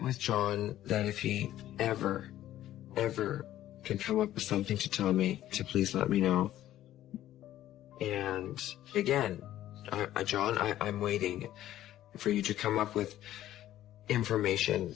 with John that if he ever can come up with something to tell me, to please let me know. And again, John, I'm waiting for you to come up with information.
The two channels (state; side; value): quieter; right; 13.2 dB